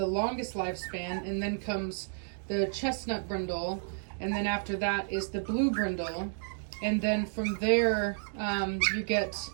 longest lifespan, and then comes the chestnut brindle, and then after that is the blue brindle, and then from there you get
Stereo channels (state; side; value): silent; left; digital silence